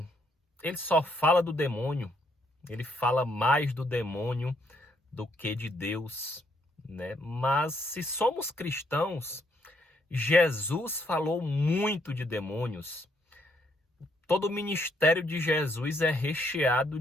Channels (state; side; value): normal; both; correlation 0.72